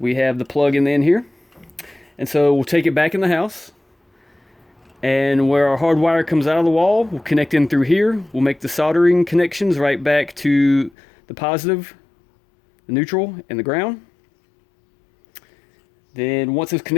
have the plug in the end here. And so we'll take it back in the house, and where our hard wire comes out of the wall, we'll connect in through here. We'll make the soldering connections right back to the positive, the neutral, and the ground. Then once those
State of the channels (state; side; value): drops out; right; at 10.9 s